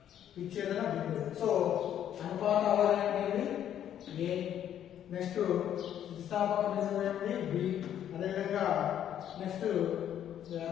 విచ్ఛేదన బిందువు. సో అనుపాత అవధి అనేది ఏ, నెక్స్ట్ స్థితిస్థాపక బిందువు ఏంటి బి, అదేవిధంగా నెక్స్ట్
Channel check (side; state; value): right; quieter; 10.3 dB